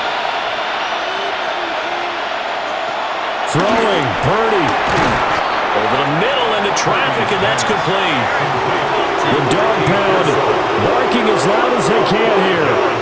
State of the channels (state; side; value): identical; both; correlation 1.00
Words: Throwing, Purdy. Over the middle into traffic, and that's complete. The dog pound barking as loud as they can here.